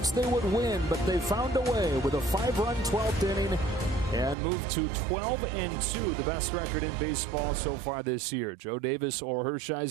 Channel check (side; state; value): left; drops out; at 4.4 s